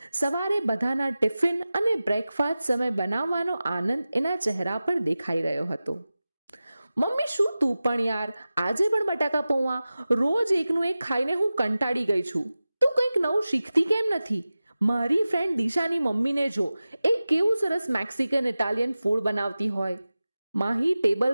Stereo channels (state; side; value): inverted; both; correlation -0.96